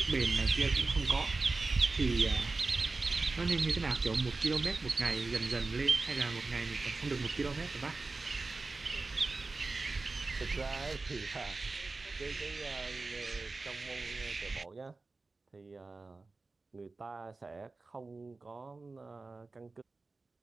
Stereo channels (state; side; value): quieter; left; 3.6 dB